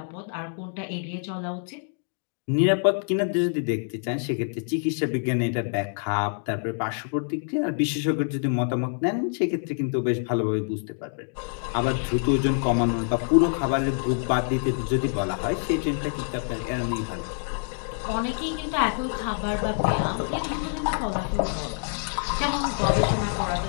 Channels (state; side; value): silent; right; 61 dB below the other